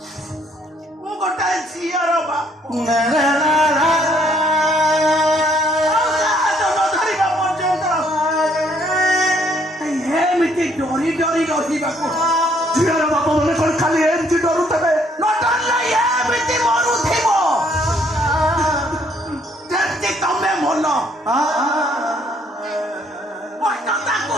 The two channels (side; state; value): both; normal; correlation 0.66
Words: ମୁଁ ଗୋଟାଏ ଝିଅର ବାପ ଏମିତି ଡରି ରହିବାକୁ ଝିଅର ବାପ ମାନେ କଣ ଖାଲି ଏମିତି ଡରୁଥିବେ ଏମିତି ମରୁଥିବ ଯେମିତି ତମେ ମନ କଷ୍ଟ ତାକୁ